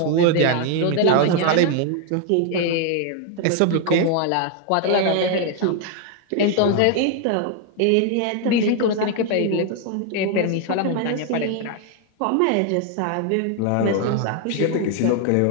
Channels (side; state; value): both; different; correlation 0.00